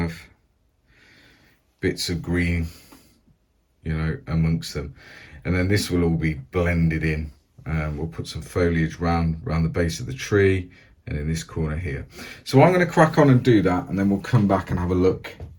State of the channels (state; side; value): identical; both; correlation 1.00